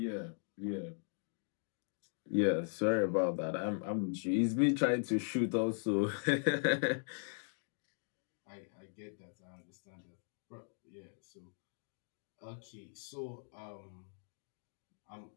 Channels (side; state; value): right; silent; digital silence